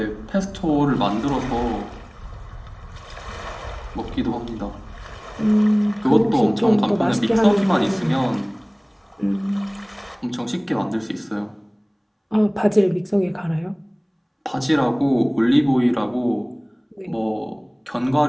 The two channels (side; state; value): both; identical; correlation 1.00